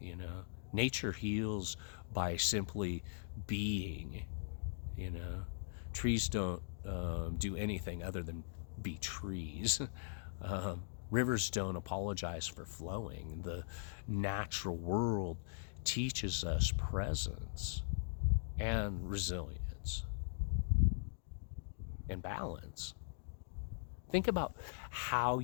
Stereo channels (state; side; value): silent; right; digital silence